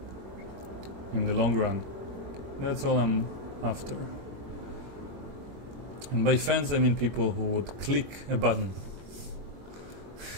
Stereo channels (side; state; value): left; late; 21 ms